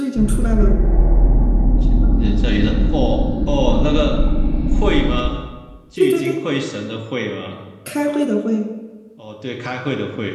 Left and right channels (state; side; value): identical; both; correlation 1.00